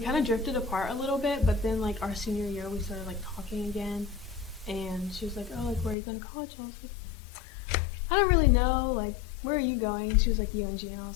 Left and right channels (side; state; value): right; drops out; at 6.0 s